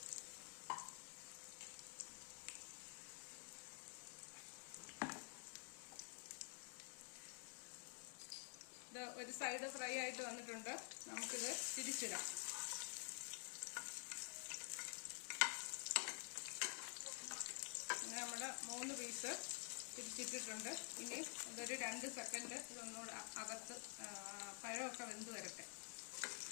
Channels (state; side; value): quieter; right; 39.2 dB